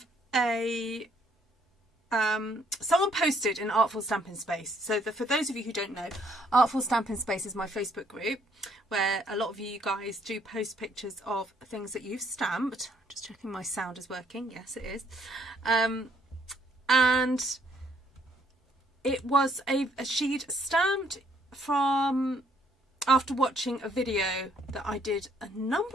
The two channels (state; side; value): normal; both; correlation 0.68